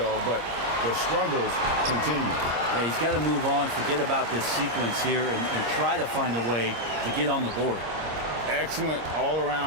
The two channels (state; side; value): late; left; 26 ms